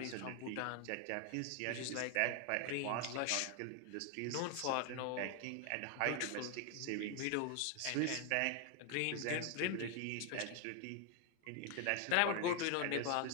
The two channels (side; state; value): both; different; correlation 0.01